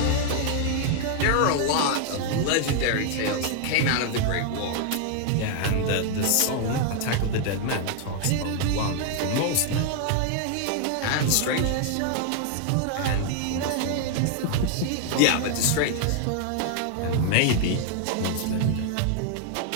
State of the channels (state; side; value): different; both; correlation 0.00